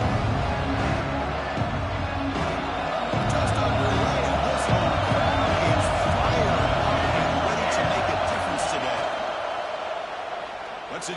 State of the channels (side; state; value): both; identical; correlation 1.00